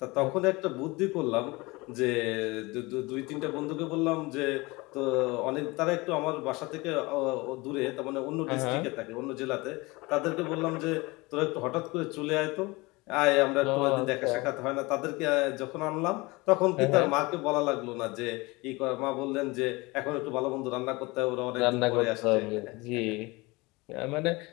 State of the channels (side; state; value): right; quieter; 23.7 dB